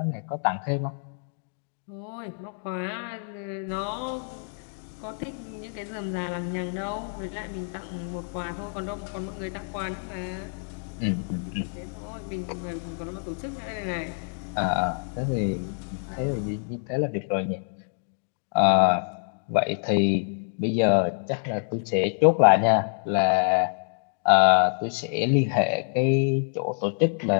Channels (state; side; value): silent; right; digital silence